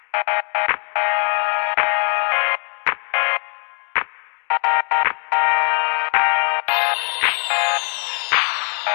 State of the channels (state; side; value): quieter; right; 39.8 dB